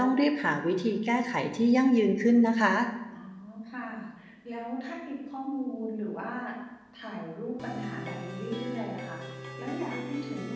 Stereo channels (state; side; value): identical; both; correlation 1.00